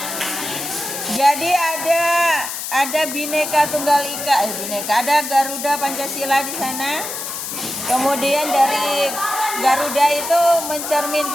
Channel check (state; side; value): noise; left; hiss, 6 dB below the sound